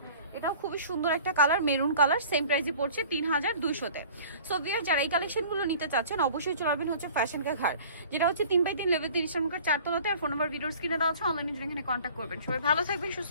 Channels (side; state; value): both; inverted; correlation -0.46